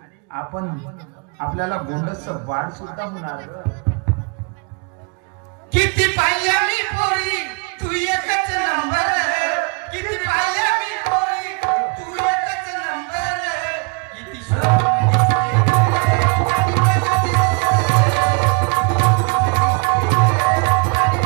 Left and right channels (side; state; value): left; quieter; 34.5 dB